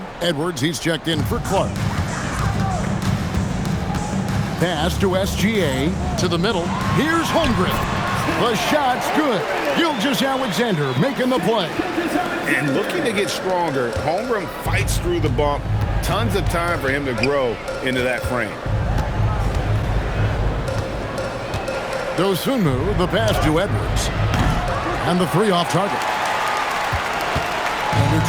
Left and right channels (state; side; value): identical; both; correlation 1.00